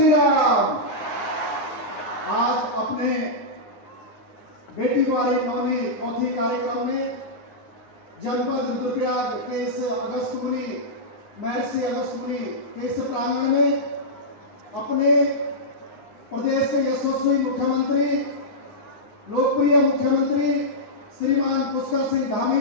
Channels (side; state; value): right; late; 9.6 ms